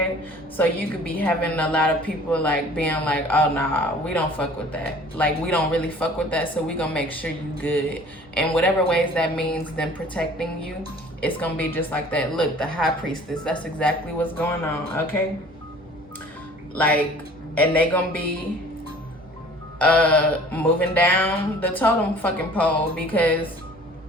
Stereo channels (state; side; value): normal; both; correlation 0.49